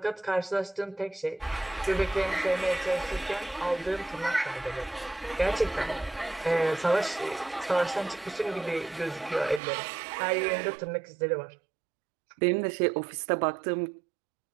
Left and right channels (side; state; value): left; drops out; at 9.6 s